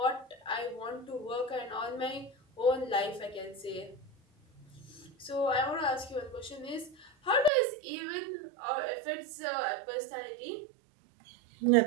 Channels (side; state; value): left; drops out; at 7.5 s